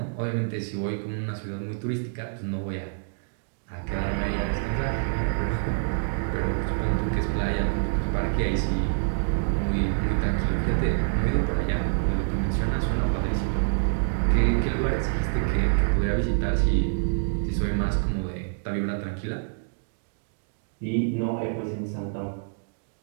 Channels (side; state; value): left; silent; digital silence